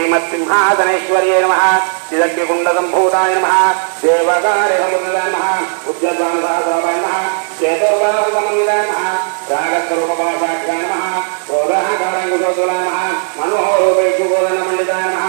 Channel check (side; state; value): left; silent; digital silence